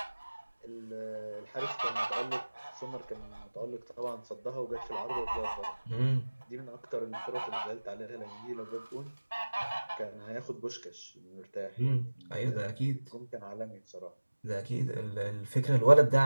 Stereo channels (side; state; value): both; inverted; correlation -1.00